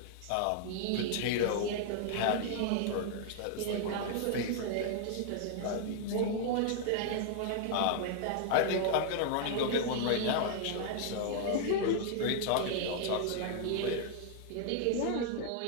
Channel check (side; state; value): both; different; correlation 0.00